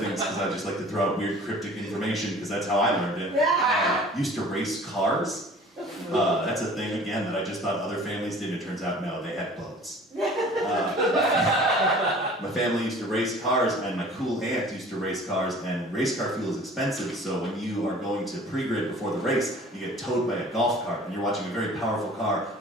because I just like to throw out weird cryptic information, because that's how I learned it, used to race cars. That's a thing, again, that I just thought other families did. It turns out, no, they had boats. My family used to race cars, and my cool aunt used to race cars, and race car fuel is expensive, so when you are going to pre-grid before the race, you get towed by a golf cart, and you're watching a very powerful car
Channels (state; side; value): normal; both; correlation 0.47